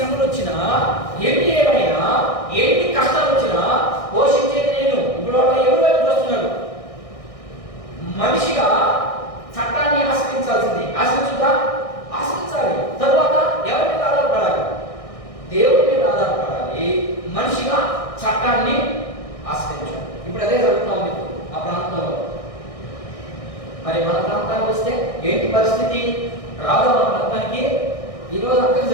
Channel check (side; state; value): right; late; 1.6 ms